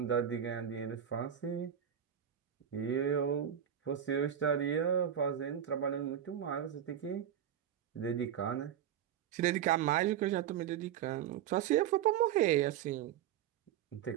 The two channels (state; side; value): quieter; left; 9.7 dB